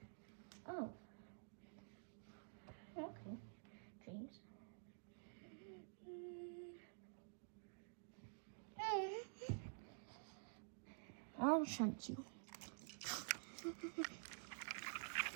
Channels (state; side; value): silent; left; digital silence